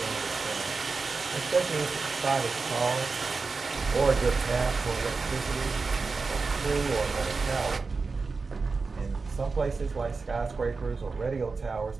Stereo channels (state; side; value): quieter; left; 4.3 dB